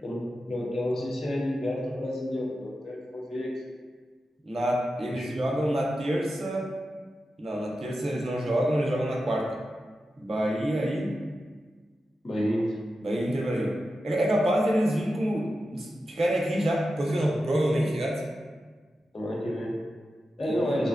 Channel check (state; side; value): normal; both; correlation 0.91